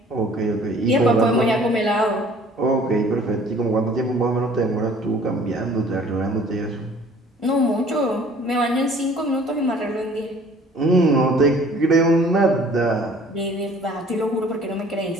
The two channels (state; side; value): normal; both; correlation 0.53